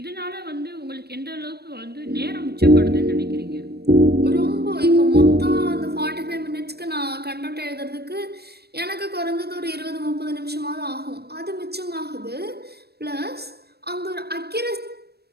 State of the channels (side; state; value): left; late; 0.47 ms